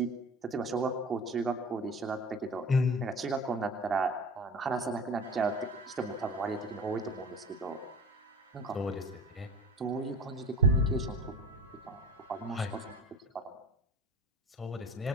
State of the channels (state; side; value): normal; both; correlation 0.37